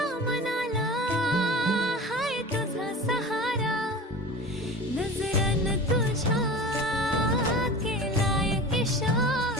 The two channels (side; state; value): both; normal; correlation 0.34